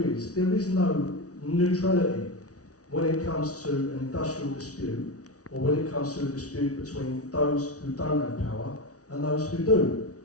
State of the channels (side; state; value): right; late; 0.67 ms